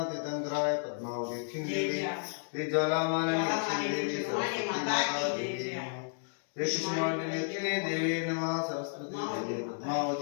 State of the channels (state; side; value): silent; right; digital silence